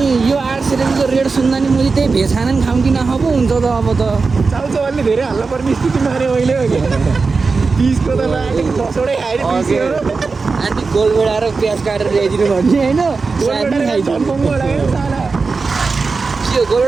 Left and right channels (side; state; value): left; quieter; 4.4 dB